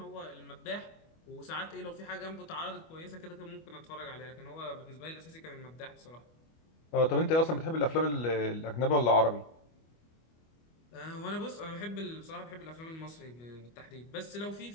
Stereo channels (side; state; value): right; late; 25 ms